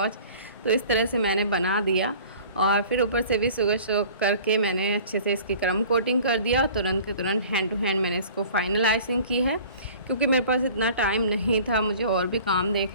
तो इस तरह से मैंने बना दिया और फिर ऊपर से भी शुगर सोक करके मैंने अच्छे से इसकी क्रम कोटिंग कर दिया और तुरंत के तुरंत हैंड टू हैंड मैंने इसको फाइनल आइसिंग की है। क्योंकि मेरे पास इतना टाइम नहीं था, मुझे और भी काम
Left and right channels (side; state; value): both; inverted; correlation -0.46